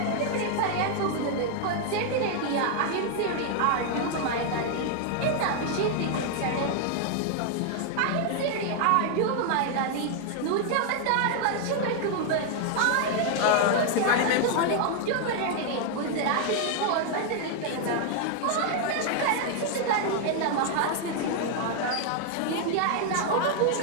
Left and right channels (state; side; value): different; both; correlation 0.00